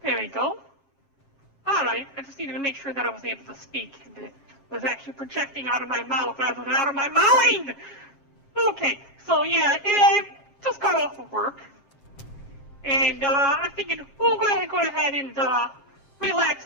There we go. Alright, I just needed to make sure that I was able to speak and it was actually projecting out of my mouth rather than out of my mind! Okay, so yeah, I just got off of work. And I'm thinking we'll go ahead and relax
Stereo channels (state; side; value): late; right; 7.7 ms